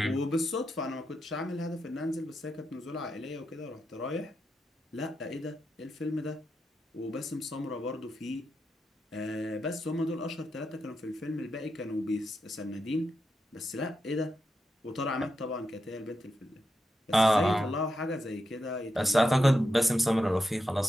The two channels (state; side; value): normal; both; correlation 0.86